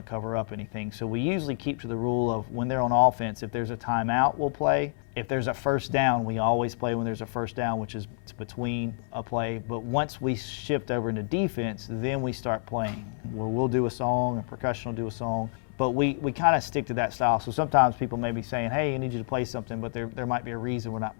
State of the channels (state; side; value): silent; right; 57 dB below the other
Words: to cover up anything. So we usually keep to the rule of when they're on offense, if there's a timeout, we'll play. If there's a first down, we always play when there's a first down, which is between a play. But once we shift over into defense, then we start playing, where we'll do a song, a percussion will do a song. But we kind of stick to that style. So sometimes people may be saying, hey, I need you to play something, but there might be a reason we're not